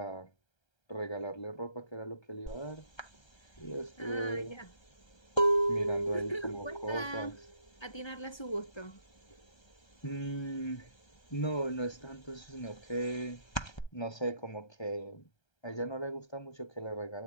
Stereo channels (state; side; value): late; right; 1.3 ms